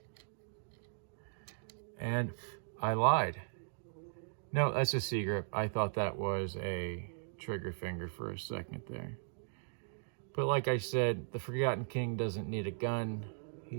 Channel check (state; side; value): silent; left; digital silence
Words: And I lied. No, that's a C-grip. I thought that was a trigger finger for a second there. But like I said, the Forgotten King doesn't need a gun.